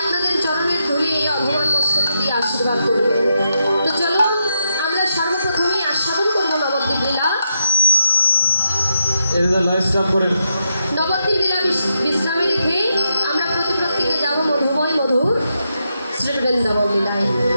আপনাদের চরণের ধুলি এই অভগবান মস্তক দিয়ে আশীর্বাদ করবেন। তো চলো আমরা সর্বপ্রথমেই আস্বাদন করবো নবদ্বীপ লীলা। নবদ্বীপ লীলা বিশ্রামে রেখে আমরা প্রত্যেকে যাবো মধুময় মধুর শ্রী বৃন্দাবন লীলায়।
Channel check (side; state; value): both; inverted; correlation -0.82